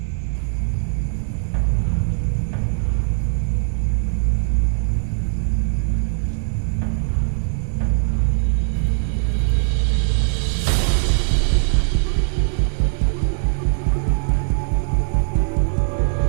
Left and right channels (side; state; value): left; silent; digital silence